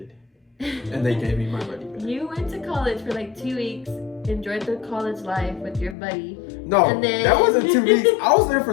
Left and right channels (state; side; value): drops out; right; at 6.0 s